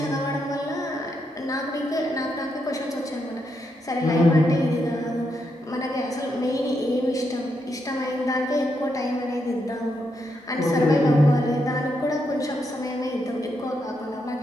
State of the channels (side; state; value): both; normal; correlation 0.81